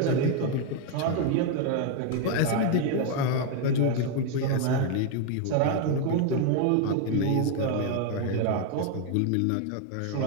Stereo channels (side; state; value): both; different; correlation 0.01